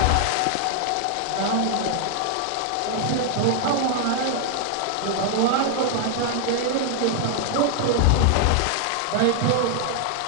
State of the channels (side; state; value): both; different; correlation 0.00